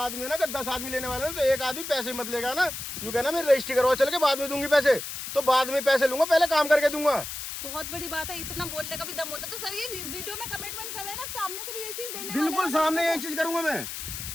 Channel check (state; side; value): noise; left; hiss, 7 dB below the sound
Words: है ना, 10 आदमी लेने वाले हैं, तो एक आदमी पैसे मत लेगा ना। यूँ कहना मैं रजिस्ट्री करवा चल के बाद में दूंगी पैसे, तो बाद में पैसे लूंगा, पहले काम करके दूंगा। बहुत बड़ी बात है, इतना बोलने का भी दम होता है। तो सर ये वीडियो में कमिटमेंट कर रहे हैं ना, सामने से भी ये चीज देने वाले हैं। बिल्कुल सामने यही चीज करूंगा मैं,